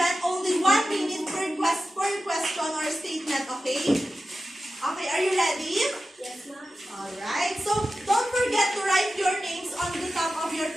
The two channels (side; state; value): both; normal; correlation 0.93